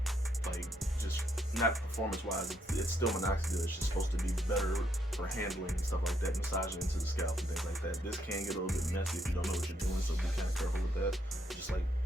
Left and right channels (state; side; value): normal; both; correlation 0.75